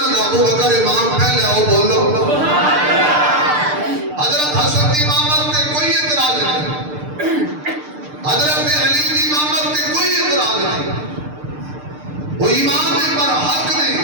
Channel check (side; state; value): left; late; 6.7 ms